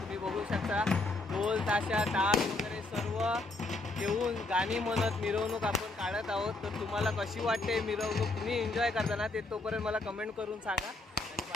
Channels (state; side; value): quieter; right; 3.1 dB